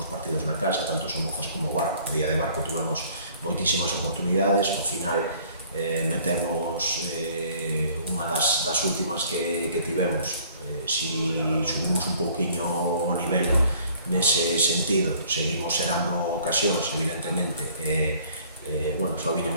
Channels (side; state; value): both; inverted; correlation -0.55